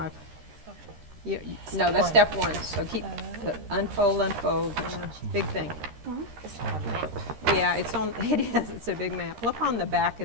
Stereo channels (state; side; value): late; left; 13 ms